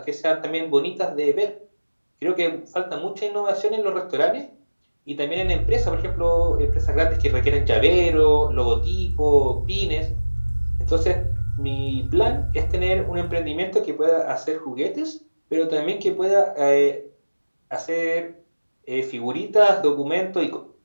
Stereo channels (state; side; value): inverted; both; correlation -1.00